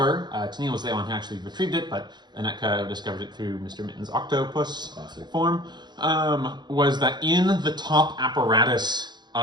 Tennille was the one who actually retrieved it, but Anetka discovered it through Mr. Mitten's octopus form, was that in the top apparatus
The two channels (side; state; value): left; late; 0.21 ms